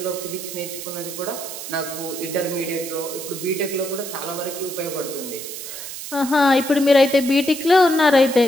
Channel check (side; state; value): right; noise; hiss, 9 dB below the sound